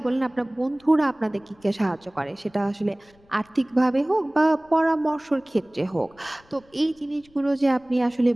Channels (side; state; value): left; noise; rumble, 30 dB below the sound